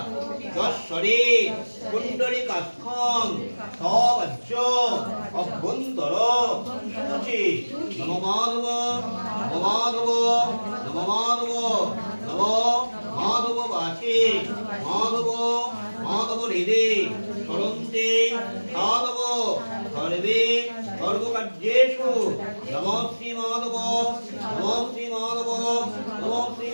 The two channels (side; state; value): both; inverted; correlation -1.00